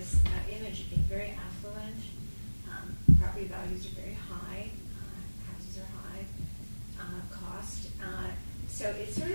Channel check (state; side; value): inverted; both; correlation -1.00